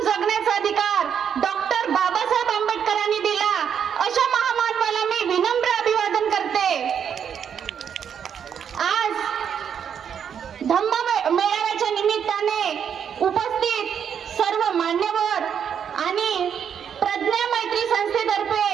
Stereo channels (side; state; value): left; quieter; 8.0 dB